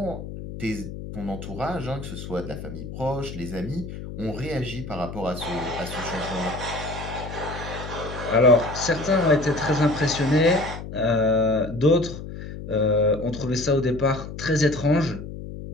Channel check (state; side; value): noise; left; hum, 10 dB below the sound